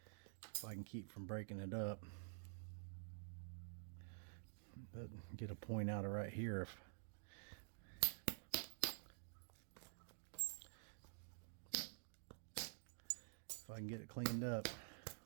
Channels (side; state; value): left; silent; digital silence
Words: I can keep from breaking it up. But get a point out of right here if I can get it cleaned up.